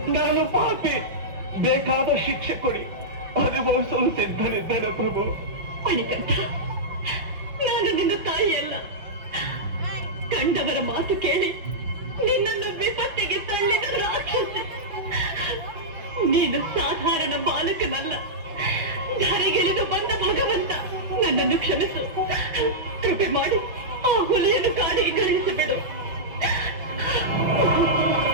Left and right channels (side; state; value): left; late; 6.1 ms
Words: ನಾನು ಪಾಪಿ. ಬೇಕಾದ ಶಿಕ್ಷೆ ಕೊಡಿ, ಅನುಭವಿಸಲು ಸಿದ್ಧನಿದ್ದೇನೆ ಪ್ರಭು. ಮಣಿಕಂಠ, ನಾನು ನಿನ್ನ ತಾಯಿಯಲ್ಲ. ಕಂಡವರ ಮಾತು ಕೇಳಿ ನಿನ್ನನ್ನು ವಿಪತ್ತಿಗೆ ತಳ್ಳಿದ ರಾಕ್ಷಸ. ನೀನು ಸಾಧಾರಣ ಬಾಲಕನಲ್ಲ, ಧರೆಗೆಳೆದು ಬಂದ ಭಗವಂತ. ನನ್ನನ್ನು ಕ್ಷಮಿಸು. ಕೃಪೆ ಮಾಡಿ ಆ ಹುಲಿಯನ್ನು ಕಾಡಿಗೆ ಕಳುಹಿಸಿಬಿಡು.